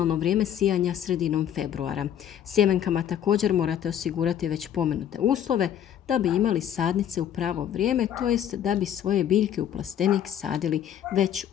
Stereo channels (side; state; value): right; quieter; 9.9 dB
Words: vrijeme sijanja sredinom februara. Sjemenkama također morate osigurati već pomenute uslove da bi imali sadnice u pravo vrijeme, to jest da bi svoje biljke u plastenik sadili već